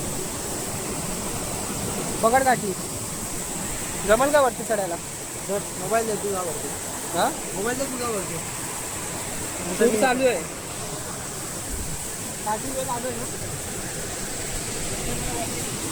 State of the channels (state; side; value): identical; both; correlation 1.00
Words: पकड काठी. जमल का वरती चढायला. मोबाईल दे तुझा वरती. हा मोबाईल दे तुझा वरती. शूट चालू आहे. काठी वेळ चालू आहे ना.